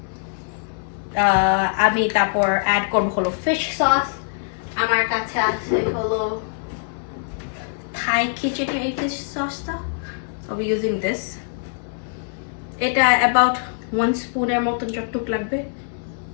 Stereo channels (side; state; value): right; silent; 64 dB below the other